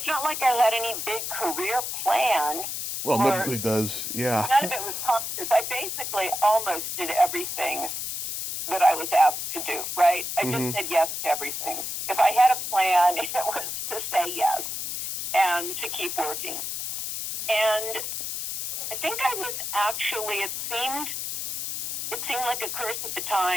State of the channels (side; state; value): left; noise; hiss, 4 dB below the sound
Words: not like I had any big career plan. Well, nobody does, yeah. None of it was conscious. I basically almost did everything that I was asked to do, right? I just said yes to everything. If I had a plan, it was to say yes and to keep working. And I think I was actually, it seemed like a curse at the